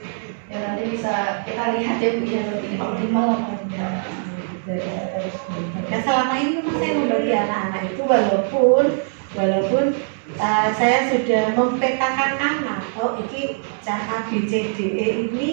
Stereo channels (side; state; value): left; silent; digital silence